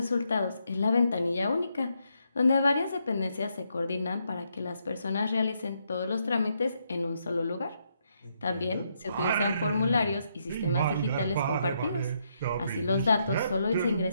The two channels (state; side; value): inverted; both; correlation -0.77